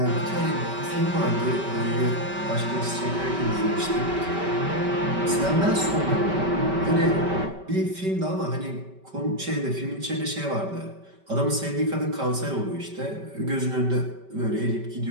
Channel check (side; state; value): left; late; 5.2 ms